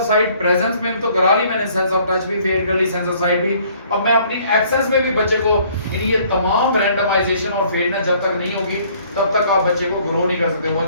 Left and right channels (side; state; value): both; inverted; correlation -0.59